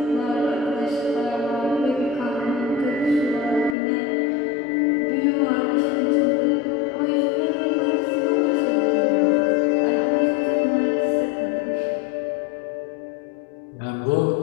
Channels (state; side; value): drops out; right; at 3.8 s